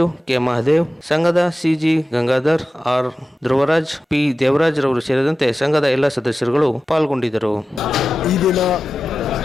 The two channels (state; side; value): normal; both; correlation 0.93